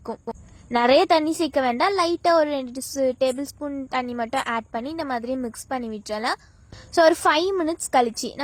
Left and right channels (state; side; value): identical; both; correlation 1.00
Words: நிறைய தண்ணி சேர்க்க வேண்டாம், லைட்டாக ஒரு 2 டேபிள் ஸ்பூன் தண்ணி மட்டும் ஆட் பண்ணி இந்த மாதிரி மிக்ஸ் பண்ணி விட்டுறலாம். ஸோ ஒரு 5 minutes கழிச்சு